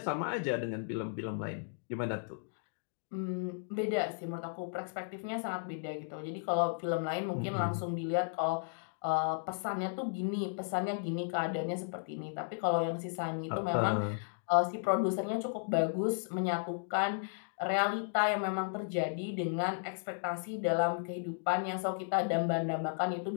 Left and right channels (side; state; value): right; silent; digital silence